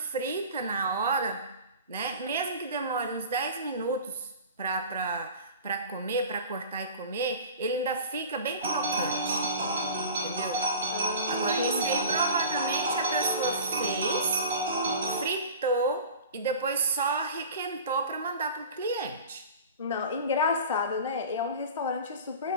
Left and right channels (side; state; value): both; inverted; correlation -0.38